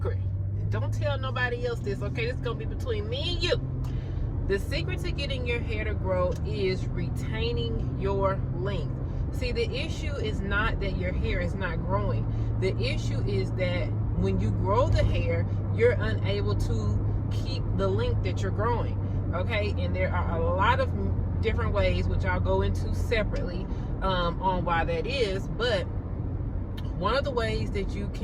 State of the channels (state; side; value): identical; both; correlation 1.00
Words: don't tell nobody else this, okay? This is gonna be between me and you. The secret to getting your hair to grow is retaining your length. See, the issue is not that your hair is not growing. The issue is that when you grow the hair, you're unable to keep the length that you're growing, okay? And there are a lot of different ways, which I'll go into separately on why that is. But one of the ways that you